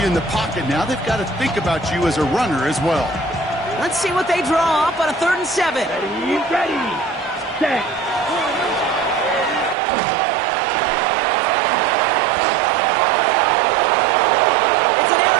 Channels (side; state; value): left; drops out; at 9.8 s